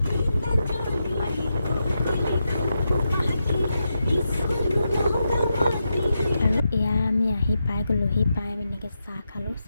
আৰু এয়া আমি আহি পাই গ'লোহি। পাই আমি এনেকৈ চাহ খালোঁ।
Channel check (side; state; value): both; inverted; correlation -0.86